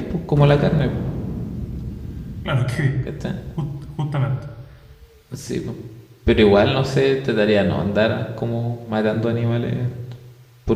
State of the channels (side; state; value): both; identical; correlation 1.00